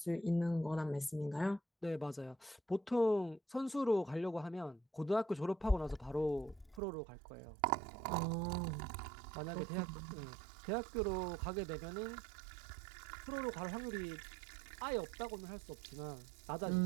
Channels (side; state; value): left; drops out; at 6.8 s